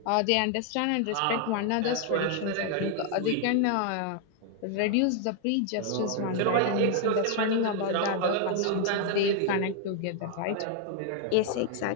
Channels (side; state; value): both; different; correlation 0.00